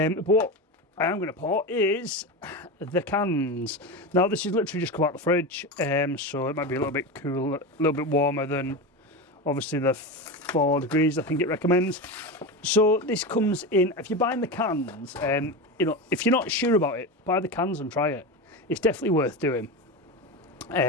what I am going to pour is the cans. Now this is literally just come out the fridge, so it might be a little bit cool, a little bit warmer than obviously the 4 degrees I think it recommends. So this comes in, if you're buying the cans, you know, if you're not sure about it, buy the cans and try it. It's definitely worth doing.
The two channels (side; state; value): both; normal; correlation 0.21